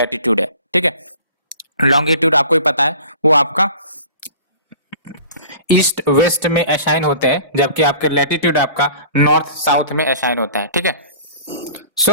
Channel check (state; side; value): inverted; both; correlation -0.45